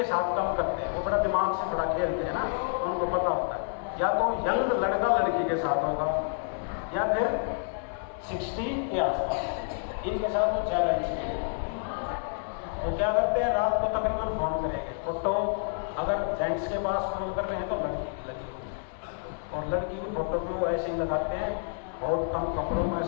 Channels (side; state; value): right; silent; 59 dB below the other